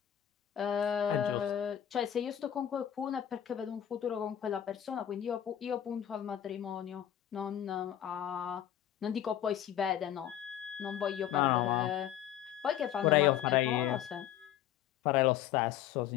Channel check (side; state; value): right; quieter; 10.8 dB